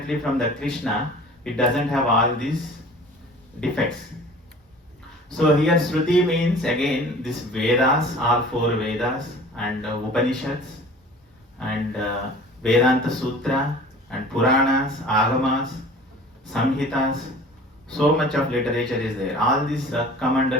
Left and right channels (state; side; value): normal; both; correlation 0.45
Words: from the Krishna. It doesn't have all these defects. So here Shruti means again this Vedas, all 4 Vedas and Upanishads and Vedanta Sutra and Puranas, Agamas, Samhitas. So much of literature is there. All these come